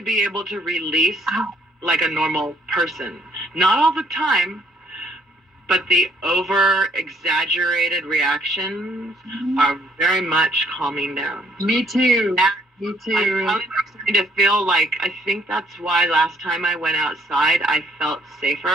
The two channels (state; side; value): normal; both; correlation 0.65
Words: able to release like a normal person. Not all the time, but the over-exaggerated reactions are very much calming down. Me too. Me too. I'm starting to feel like, I think that's why last time I went outside, I felt